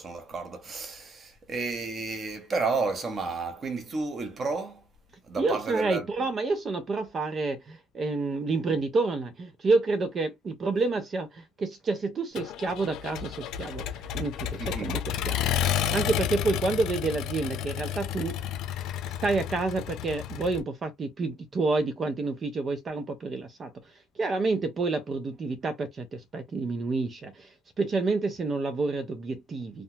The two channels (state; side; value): normal; both; correlation 0.70